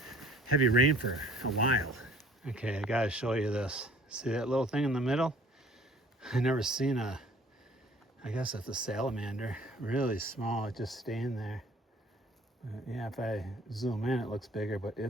heavy rain for a while. Okay, I gotta show you this. See that little thing in the middle? I never seen I guess it's a salamander. Really small, it just staying there. Yeah, if I zoom in, it looks bigger, but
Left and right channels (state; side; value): normal; both; correlation 0.54